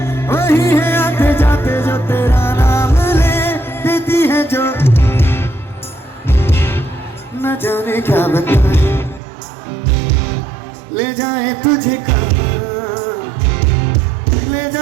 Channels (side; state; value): left; drops out; at 9.2 s